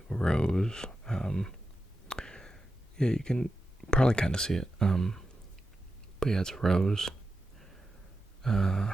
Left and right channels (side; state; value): both; normal; correlation 0.90